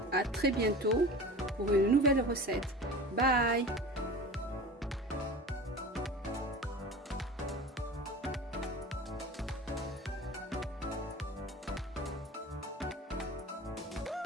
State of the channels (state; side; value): normal; both; correlation 0.35